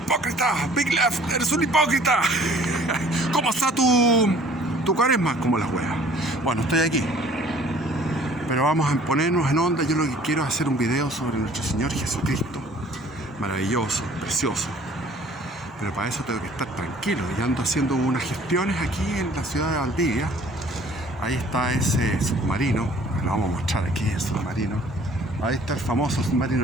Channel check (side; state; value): both; normal; correlation 0.54